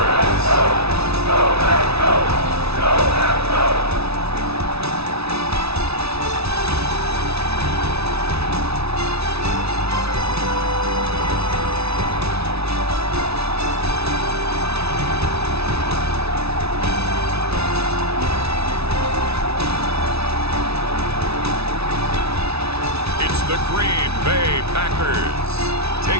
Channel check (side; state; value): left; late; 0.79 ms